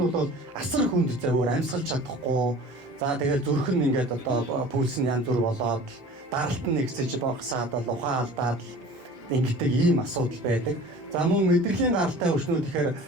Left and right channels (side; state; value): both; normal; correlation 0.43